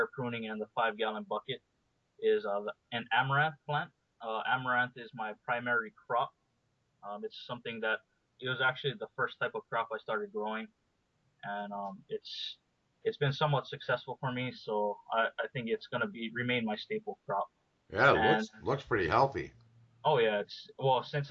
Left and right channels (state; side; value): identical; both; correlation 1.00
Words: pruning and the 5 gallon bucket, is an amaranth plant. Amaranth is my primary crop. It's something that it was actually the first type of crop I started growing, and it's been somewhat successful for me. So I think it's gonna be remain my staple crop. Yeah, it And looks pretty healthy. oh yeah, it's well since